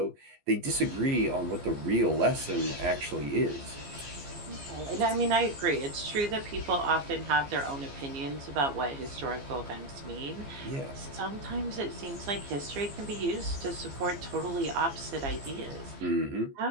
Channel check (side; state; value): left; late; 15 ms